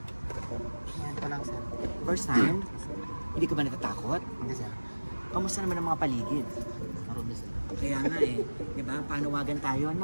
Yan pa lang, sir. First time? Hindi ka ba natatakot? Hindi, sir. Kamusta naman ang mga paligid? Marami, sir. Kaya nga eh, di ba? Panawagan tayo,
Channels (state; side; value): inverted; both; correlation -1.00